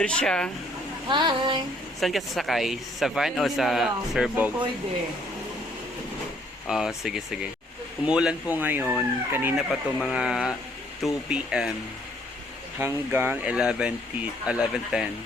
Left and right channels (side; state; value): both; normal; correlation 0.65